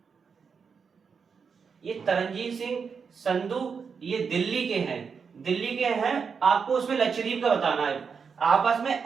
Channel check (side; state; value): left; quieter; 5.9 dB